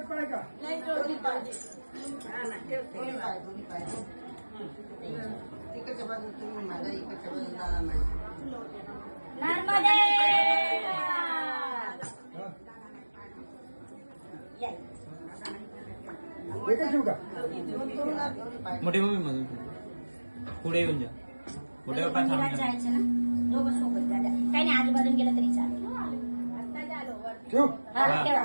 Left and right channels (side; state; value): both; inverted; correlation -1.00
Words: पाय का नाही दोन्ही पाय तिकडच्या बाजून तुम्ही माझ्या इकडच्या बाजून दादा नर्मदे एकच येऊ का मोठी मम्मी मधून पुढे येऊन जा पुढे मंदिरात जायचं ना दोघं सोबत दादा काही नाही आजूबाजून गेलं तरी चालेल ठेव